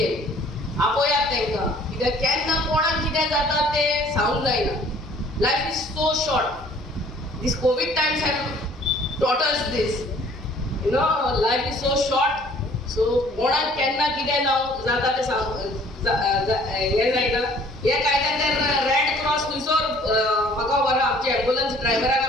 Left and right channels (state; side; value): normal; both; correlation 0.55